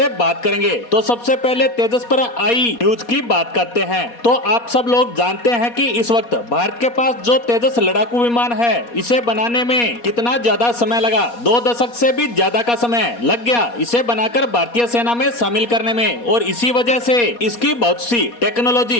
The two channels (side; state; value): right; late; 4.2 ms